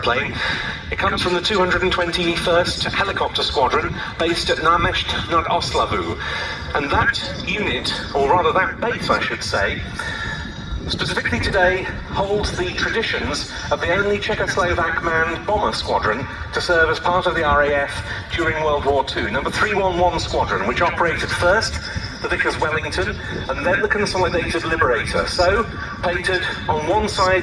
It comes from the 221st Helicopter Squadron based at Náměšť nad Oslavou. And that unit, or rather that base I should say, specifically today holds the traditions of the only Czechoslovak manned bomber squadron to serve as part of the RAF during World War II, number 311 Squadron, which operated first the Vickers Wellington and then the Consolidated Liberator. So, painted on one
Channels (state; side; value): identical; both; correlation 1.00